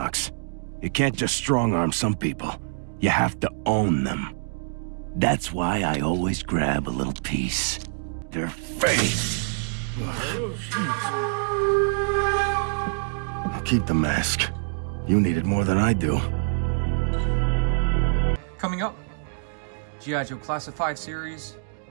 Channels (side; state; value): left; silent; digital silence